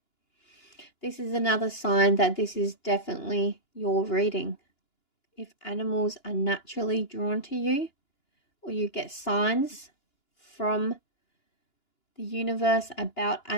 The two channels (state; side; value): late; right; 2.9 ms